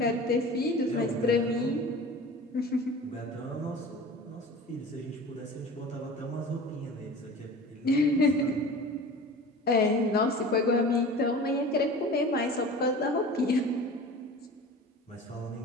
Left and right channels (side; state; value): both; normal; correlation 0.38